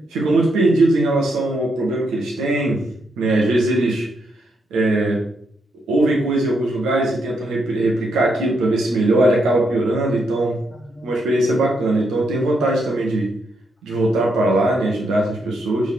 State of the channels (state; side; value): normal; both; correlation 0.79